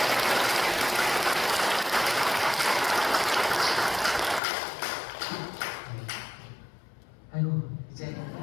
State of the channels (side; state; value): right; drops out; at 4.4 s